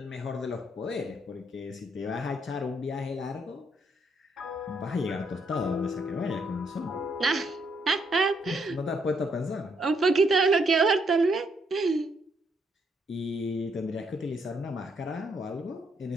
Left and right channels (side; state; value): both; normal; correlation 0.74